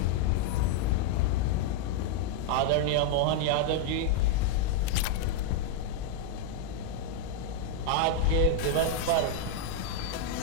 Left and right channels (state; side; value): different; both; correlation 0.00